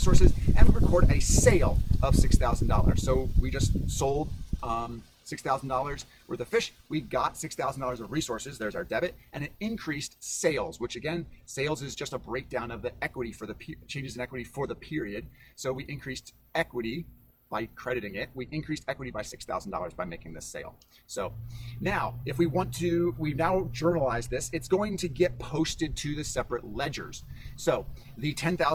and we record a sale of $6,000. So we just sold $6,000 worth of fish. We got $6,000 of resources. There's our debit, and it increased sales, which again, sales is just a breakdown of the equity for the changes in equity for the period. So we increased equity by crediting it. We increased equity by $6,000 by making this sale. So now, if we want to, we've now journalized this. It's going to get posted to the separate ledgers. So the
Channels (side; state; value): both; identical; correlation 1.00